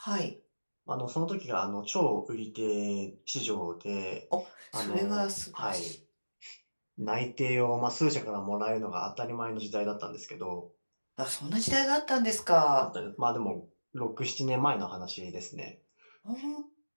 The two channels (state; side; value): inverted; both; correlation -1.00